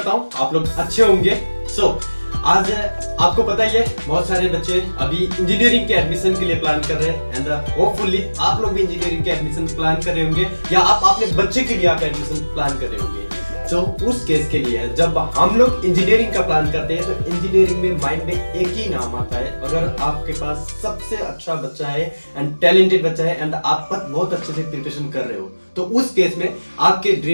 हूँ आप लोग अच्छे होंगे। आज आपको पता ही है बहुत सारे बच्चे अभी इंजीनियरिंग के एडमिशन के लिए प्लान कर रहे हैं एंड होपफुली आप लोग भी इंजीनियरिंग के एडमिशन प्लान कर रहे होंगे या आप अपने बच्चे के लिए आप एडमिशन प्लान कर रहे होंगे। तो उस केस के लिए जब हम लोग इंजीनियरिंग का प्लान करते हैं तो इंजीनियरिंग में माइंड में एक ही नाम आता है। अगर आपके पास सबसे अच्छा बच्चा है एंड टैलेंटेड बच्चा है एंड आप बहुत अच्छे से प्रिपरेशन कर रहे हो तो उस केस में आपके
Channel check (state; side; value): inverted; both; correlation -1.00